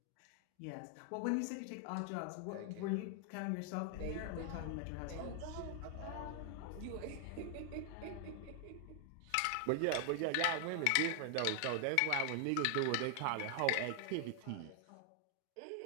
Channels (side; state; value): both; different; correlation 0.00